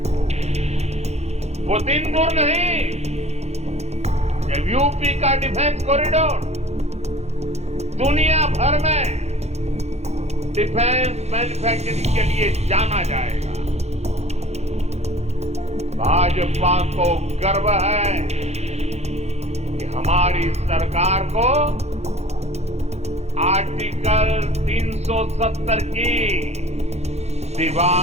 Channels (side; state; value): left; late; 0.31 ms